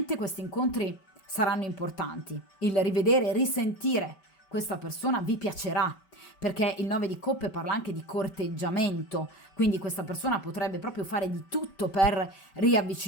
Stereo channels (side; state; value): right; late; 5.2 ms